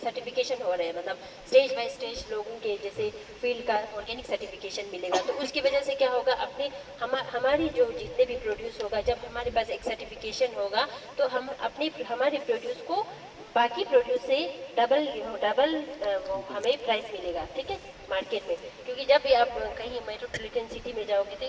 हो रहे हैं, मतलब स्टेज बाय स्टेज लोगों के जैसे फील्ड का ऑर्गेनिक सर्टिफिकेशन मिलेगा, तो उसकी वजह से क्या होगा, अपने हमारी जो जितने भी प्रोड्यूस होगा, जब हमारे पास एक सर्टिफिकेशन होगा तो हम अपने हमारे प्रोड्यूस को बाकी प्रोड्यूस से डबल डबल हमें प्राइस मिलेगा, ठीक है, मार्केट में। क्योंकि जब भी आप कहीं मेट्रोपॉलिटन सिटी में जाओगे तो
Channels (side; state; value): both; identical; correlation 1.00